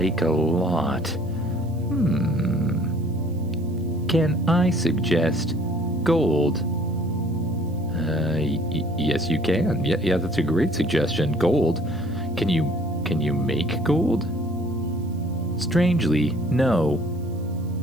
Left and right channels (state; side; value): noise; right; hiss, 29 dB below the sound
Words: a lot. Can I suggest gold? Yes, you can. Yeah, that's a great suggestion. Gold. Can you make gold? Strangely, no.